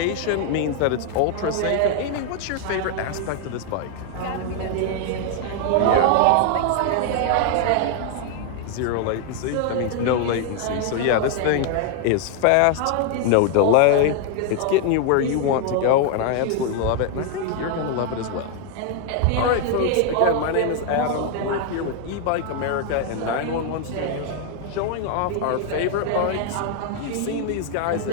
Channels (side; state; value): both; different; correlation 0.00